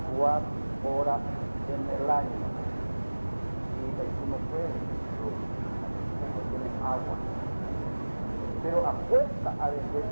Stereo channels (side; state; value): both; inverted; correlation -1.00